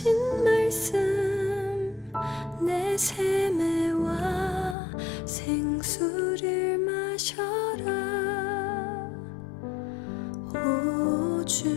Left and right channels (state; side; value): drops out; right; at 4.8 s